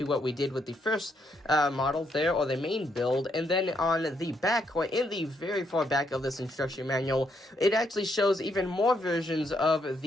what we did with the first model there, or the main build. And then on the back, or in the very far back of this instruction manual, it actually shows even more versions of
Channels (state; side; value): normal; both; correlation 0.76